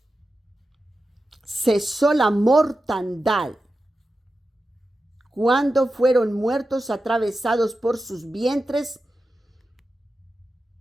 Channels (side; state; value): both; normal; correlation 0.92